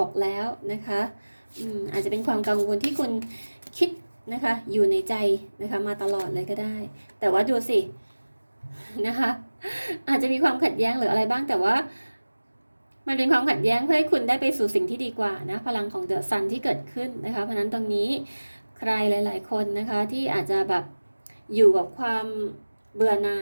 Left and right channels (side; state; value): both; inverted; correlation -1.00